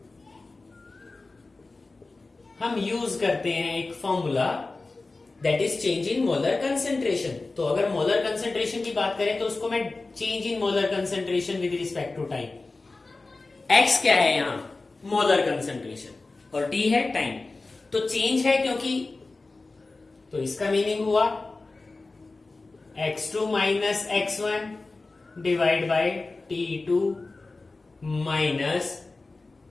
हम यूज करते हैं एक formula, that is change in molar concentration. तो अगर मोलर कंसेंट्रेशन की बात करें तो उसको मैं change in molar concentration with respect to time. X क्या है यहां, मोलर कंसेंट्रेशन, और टी है टाइम। तो चेंज है क्योंकि, तो इसका मीनिंग हुआ x2 minus x1 divide by t2 minus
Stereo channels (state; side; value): quieter; right; 3.5 dB